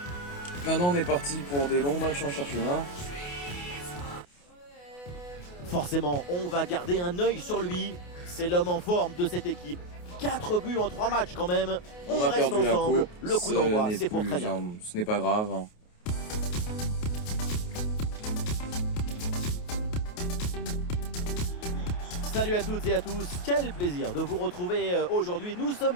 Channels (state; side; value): late; right; 28 ms